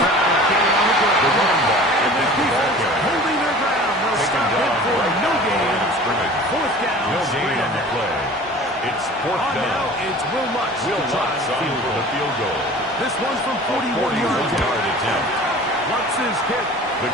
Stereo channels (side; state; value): both; normal; correlation 0.43